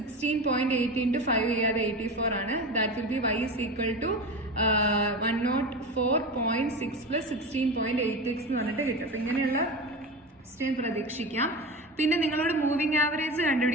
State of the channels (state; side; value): normal; both; correlation 0.26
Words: into 5 ചെയ്യാതെ 84 ആണ്. That will be y is equal to 104.6 plus 16.8x എന്ന് പറഞ്ഞിട്ട് കിട്ടും. അപ്പൊ ഇങ്ങനെയുള്ള ക്വസ്റ്റ്യൻ പ്രതീക്ഷിക്കാം. പിന്നെ നിങ്ങളോട് മൂവിംഗ് ആവറേജ്